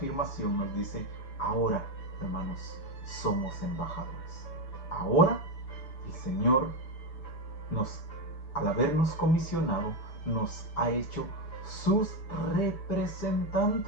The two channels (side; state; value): right; late; 6.8 ms